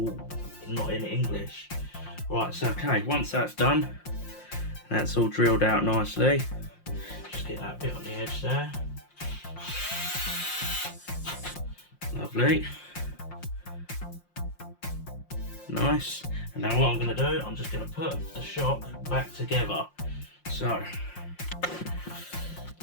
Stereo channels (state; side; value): late; right; 5.7 ms